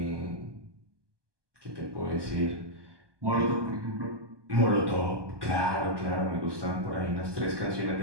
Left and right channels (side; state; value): left; late; 1.2 ms